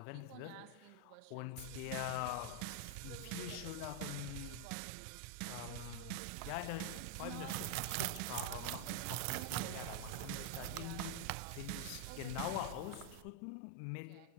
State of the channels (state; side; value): different; both; correlation 0.00